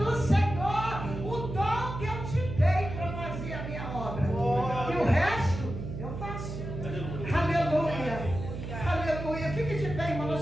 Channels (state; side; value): noise; right; hum, 7 dB below the sound